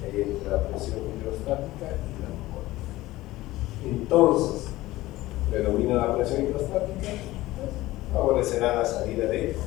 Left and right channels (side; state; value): right; quieter; 17.5 dB